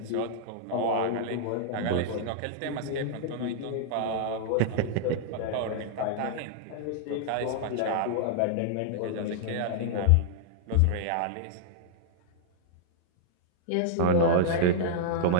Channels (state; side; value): different; both; correlation -0.01